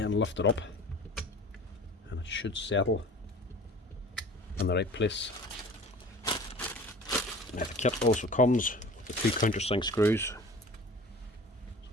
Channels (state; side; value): normal; both; correlation 0.42